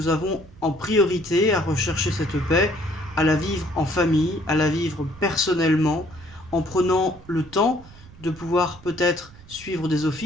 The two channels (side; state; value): right; noise; rumble, 20 dB below the sound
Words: avons en priorité à rechercher cette paix, à la vivre en famille, à la vivre personnellement, en prenant le temps de pouvoir peut-être suivre des